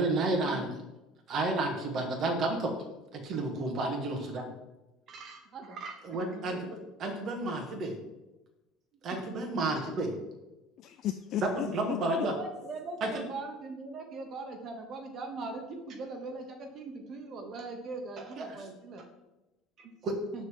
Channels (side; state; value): both; normal; correlation 0.46